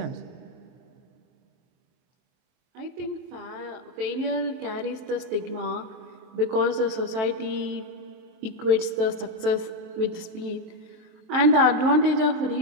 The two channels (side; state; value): left; late; 23 ms